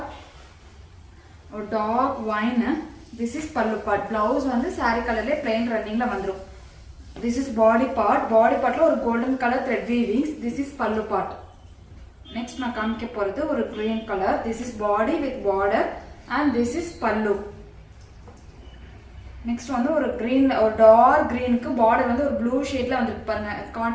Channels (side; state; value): both; identical; correlation 1.00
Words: dark wine. This is pallu part. Blouse வந்து saree கலர்ல plain runningல வந்துரும். This is body part. Body partல ஒரு golden color thread weavings. This is pallu part. Next நான் காமிக்க போறது ஒரு green color. This is body with border and this is pallu. Next வந்து ஒரு green ஒரு dark green க்கு border வந்து ஒரு blue shadeல வந்திருக்கு பாருங்க.